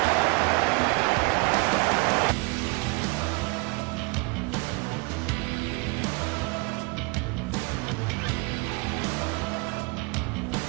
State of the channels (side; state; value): left; quieter; 28.6 dB